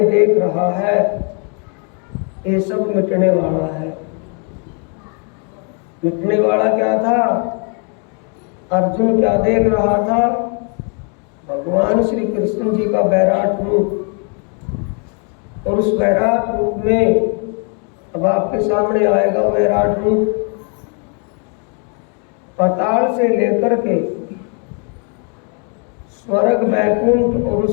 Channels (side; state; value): right; quieter; 38.6 dB